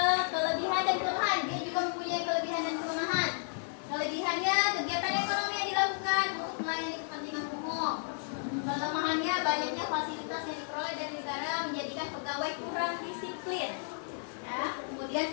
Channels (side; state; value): right; silent; 56 dB below the other